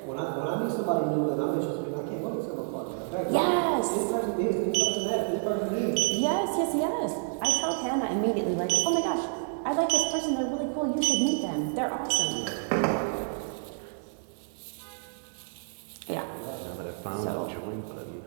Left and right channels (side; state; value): left; silent; digital silence